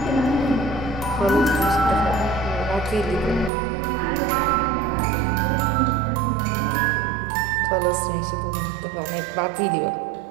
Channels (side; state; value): left; drops out; at 3.5 s